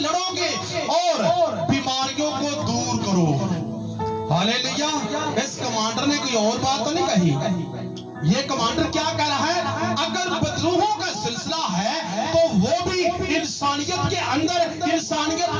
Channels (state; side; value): identical; both; correlation 1.00